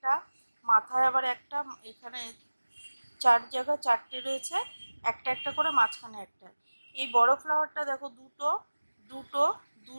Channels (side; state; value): both; inverted; correlation -1.00